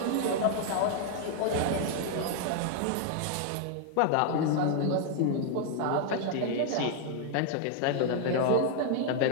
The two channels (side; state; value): both; different; correlation 0.00